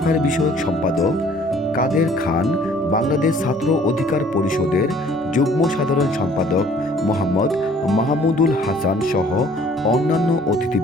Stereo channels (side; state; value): right; noise; rumble, 25 dB below the sound